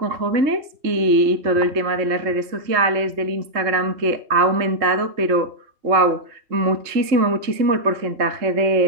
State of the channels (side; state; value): left; late; 3.7 ms